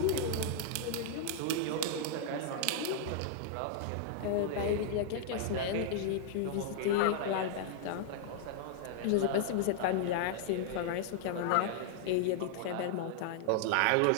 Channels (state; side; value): different; both; correlation -0.01